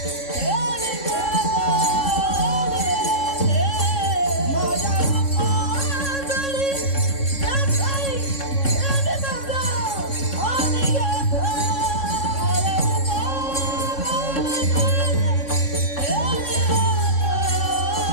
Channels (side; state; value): right; late; 3.6 ms